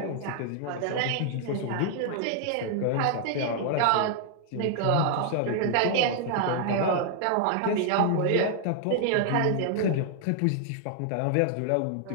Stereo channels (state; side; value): different; both; correlation 0.00